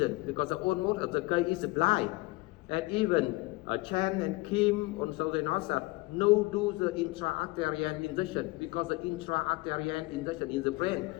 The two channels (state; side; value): quieter; right; 22.7 dB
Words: because almost of the case is blind. And even Chen and Kim also they know that no do the intra-arterial injection because the intra-arterial injection in the brain,